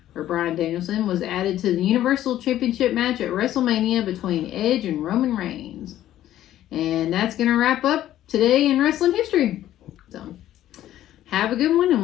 Bryan Danielson, was added to the Universal Championship match at WrestleMania between Edge and Roman Reigns. And that's going to wrap up today in wrestling history. So, have a good one,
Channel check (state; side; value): quieter; right; 12.8 dB